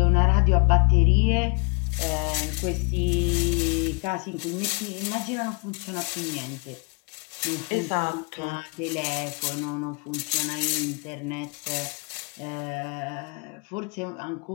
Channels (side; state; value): right; quieter; 34.6 dB